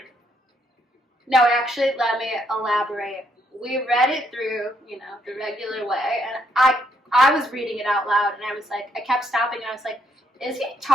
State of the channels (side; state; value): both; normal; correlation 0.73